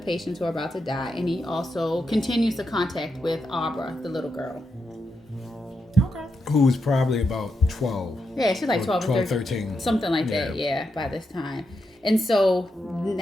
patients who are about to die, and he also continues the contact with Abra, the little girl. Okay. Who's probably about 12. Yeah, she's like 12 or 13. something like that. Yeah, by this time. And so,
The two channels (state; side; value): normal; both; correlation 0.85